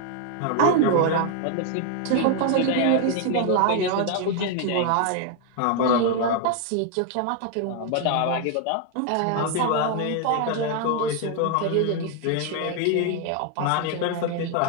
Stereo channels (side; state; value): both; different; correlation 0.00